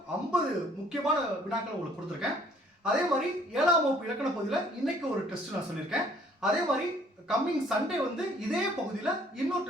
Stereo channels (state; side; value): normal; both; correlation 0.59